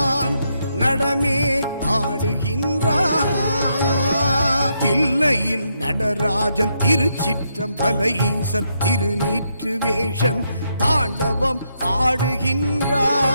நடமே ஆடுகின்றான். தில்லையில் நடராஜன் திருச்சிற்றம்பல ஈசன் திருநீற்று வேஷன் தாண்டவம்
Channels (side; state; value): both; inverted; correlation -0.79